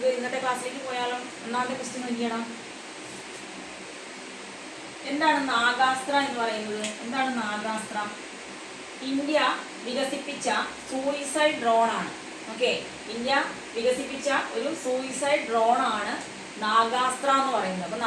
ഇന്നത്തെ ക്ലാസ്സിലേക്ക് പോയാലോ. ഒന്നാമത്തെ ക്വസ്റ്റ്യൻ നോക്കിയണം. എന്താണ് നാഗാസ്ത്ര എന്ന് പറയുന്നത്? എന്താണ് നാഗാസ്ത്ര? ഇന്ത്യ വികസിപ്പിച്ച സൂയിസൈഡ് ഡ്രോൺ ആണ്. ഓക്കെ, ഇന്ത്യ വികസിപ്പിച്ച ഒരു സൂയിസൈഡ് ഡ്രോൺ ആണ് നാഗാസ്ത്ര എന്ന് പറയുന്നത്. അപ്പൊ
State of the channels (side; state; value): both; identical; correlation 1.00